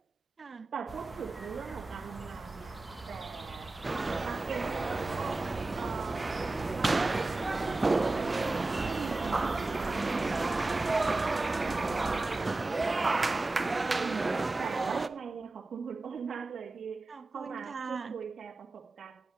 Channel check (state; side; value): quieter; left; 3.1 dB